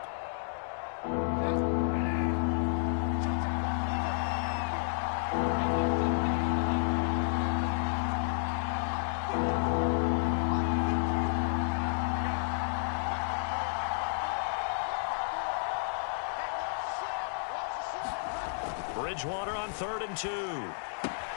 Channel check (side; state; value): right; silent; digital silence